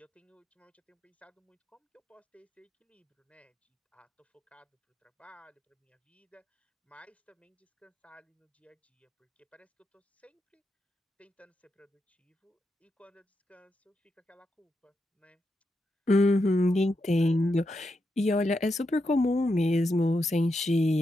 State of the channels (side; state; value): both; normal; correlation 0.85